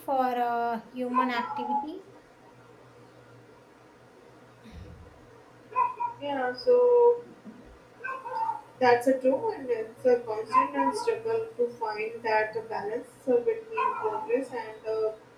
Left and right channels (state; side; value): identical; both; correlation 1.00